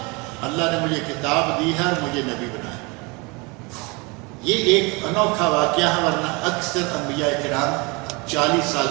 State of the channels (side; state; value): left; quieter; 28.0 dB